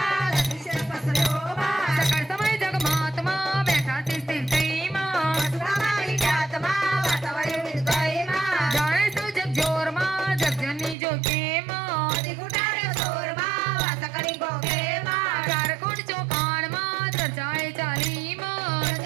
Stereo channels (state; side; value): drops out; left; at 11.0 s